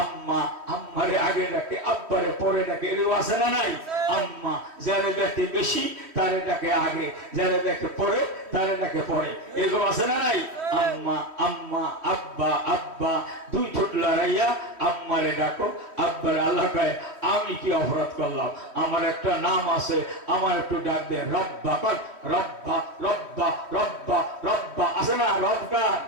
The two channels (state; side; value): late; left; 3.1 ms